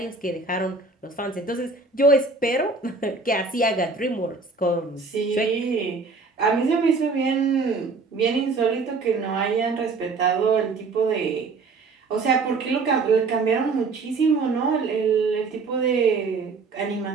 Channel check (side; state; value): left; quieter; 4.1 dB